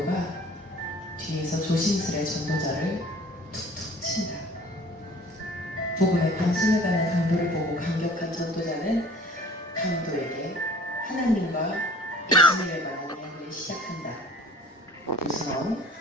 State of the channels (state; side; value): normal; both; correlation 0.48